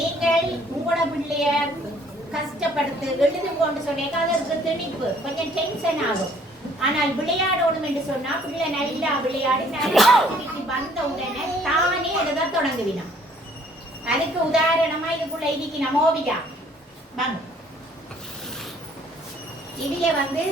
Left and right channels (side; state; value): both; normal; correlation 0.60